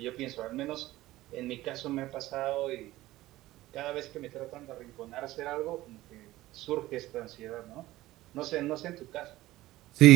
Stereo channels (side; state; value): left; quieter; 16.7 dB